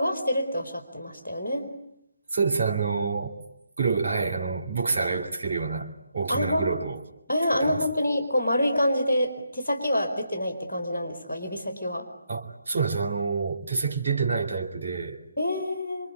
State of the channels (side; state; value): both; inverted; correlation -0.77